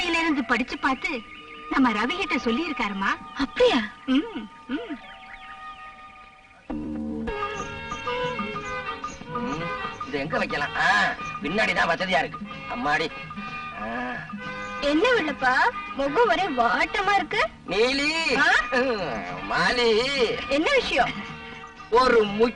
இருந்து படிச்சு பார்த்து நம்ம ரவி கிட்ட சொல்லி இருக்காருமா. அப்படியா? இது எங்க வைக்கலாம்? பின்னாடிதான் வசதியா இருக்கு. அம்மாடி. என்ன வெள்ளப்பா, முகம் ஒரே வாட்டமா இருக்கு. நீலி, மாலி, என்ன விஷயம்? ஒரு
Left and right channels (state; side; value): identical; both; correlation 1.00